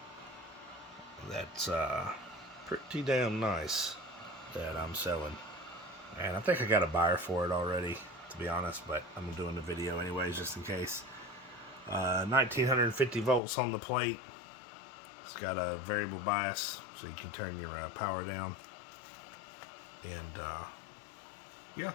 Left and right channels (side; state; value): right; drops out; at 13.4 s